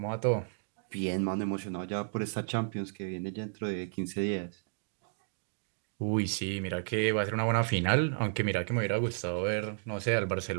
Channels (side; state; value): left; silent; digital silence